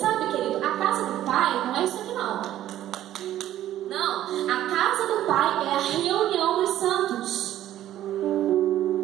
querido, a casa do Pai não é isso aqui não. Não, a casa do Pai é a reunião dos santos.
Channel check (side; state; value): left; quieter; 12.7 dB